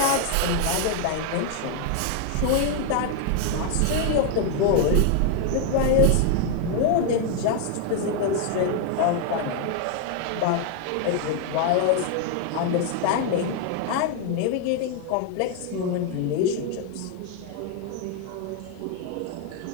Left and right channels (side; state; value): both; different; correlation 0.00